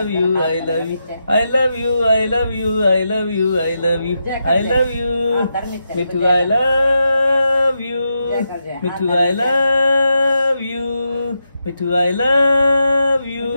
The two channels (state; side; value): inverted; both; correlation -0.85